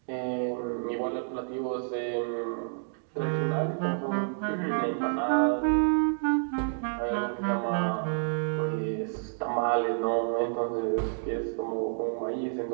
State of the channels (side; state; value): left; silent; digital silence